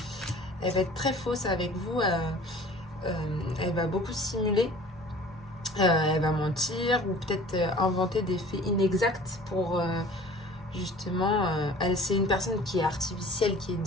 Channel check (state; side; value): normal; both; correlation 0.46